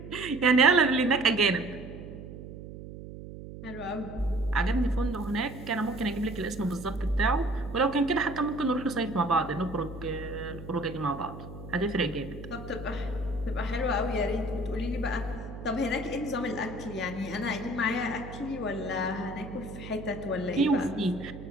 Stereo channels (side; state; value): right; noise; hum, 12 dB below the sound